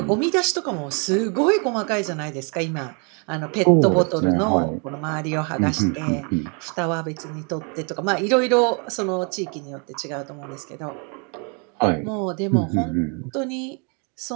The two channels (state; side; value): quieter; left; 35.7 dB